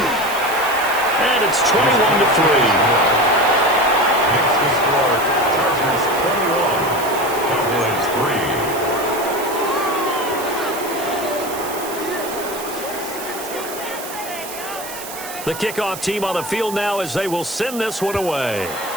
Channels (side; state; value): right; noise; hiss, 11 dB below the sound